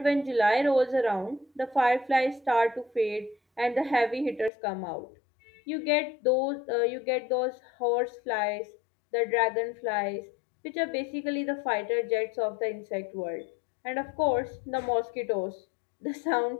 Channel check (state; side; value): drops out; right; at 4.5 s